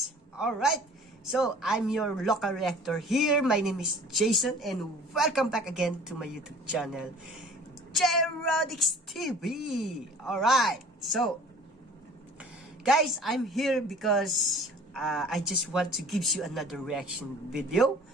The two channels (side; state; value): both; normal; correlation 0.48